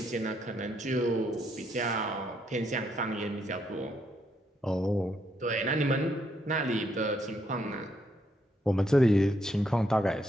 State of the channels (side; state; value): both; normal; correlation 0.75